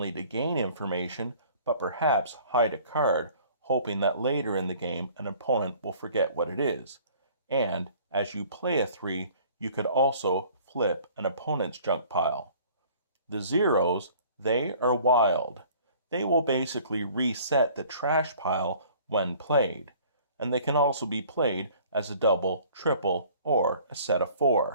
to gain information, but perhaps hide a card, hoping that later in the game an opponent will forget what it is. And as you play a 3, you could also flip an opponent's junk pile. The zeros, they are wild. They will basically reset the trash pile when played, and they can also be played as a double, triple, or a set of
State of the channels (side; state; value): both; inverted; correlation -0.52